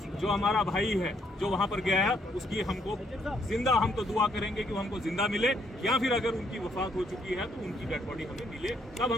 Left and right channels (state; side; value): normal; both; correlation 0.71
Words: जो हमारा भाई है जो वहां पर गया है, उसकी हमको जिंदा हम तो दुआ करेंगे कि वो हमको जिंदा मिले, या फिर अगर उनकी वफात हो चुकी है तो उनकी डेड बॉडी हमें मिले, तब